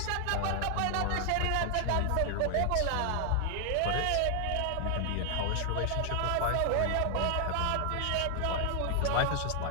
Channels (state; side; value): different; both; correlation 0.00